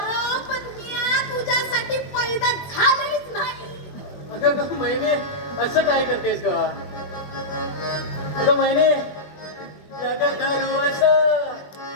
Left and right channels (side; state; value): right; late; 21 ms